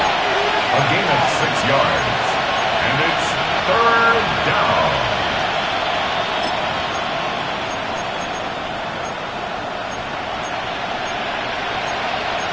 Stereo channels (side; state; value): both; identical; correlation 1.00